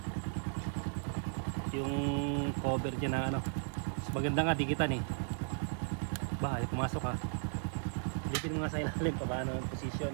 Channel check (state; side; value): silent; left; 54 dB below the other